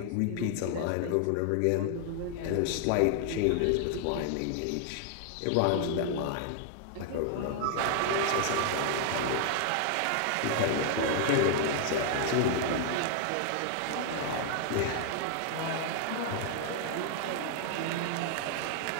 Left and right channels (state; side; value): different; both; correlation 0.00